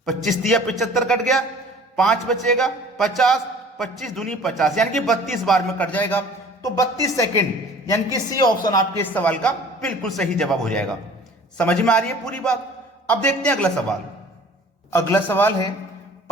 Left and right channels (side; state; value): both; normal; correlation 0.48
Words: 25 तिया 75 कट गया, 5 बचेगा 50, 25 दूनी 50, यानी कि 32 बार में कट जाएगा। तो 32 सेकंड, यानी कि सी ऑप्शन आपके इस सवाल का बिल्कुल सही जवाब हो जाएगा। समझ में आ रही है पूरी बात? अब देखते हैं अगला सवाल। अगला सवाल है,